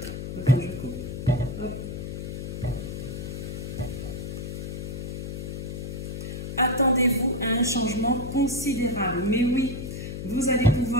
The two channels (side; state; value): left; noise; hum, 6 dB below the sound